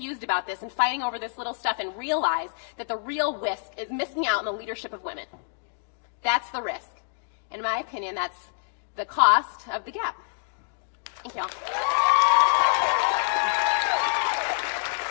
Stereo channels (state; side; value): silent; right; digital silence